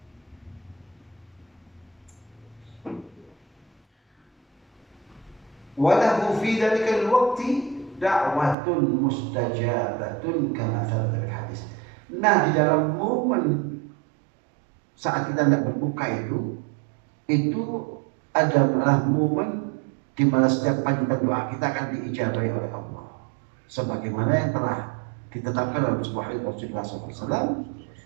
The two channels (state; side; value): drops out; left; at 8.6 s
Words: Walahu fi dzalikal waqti da'watun mustajabatun kama thabata bil hadis. Nah, di dalam momen saat kita tidak berbuka itu adalah momen di mana setiap panjatan doa kita akan diijabahi oleh Allah. Sebagaimana yang telah ditetapkan dalam sebuah hadis Rasulullah SAW,